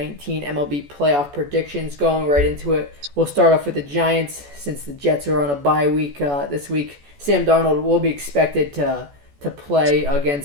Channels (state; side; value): late; left; 14 ms